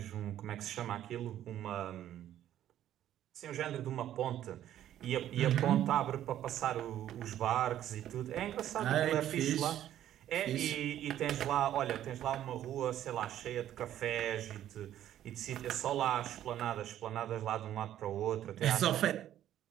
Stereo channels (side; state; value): left; quieter; 11.8 dB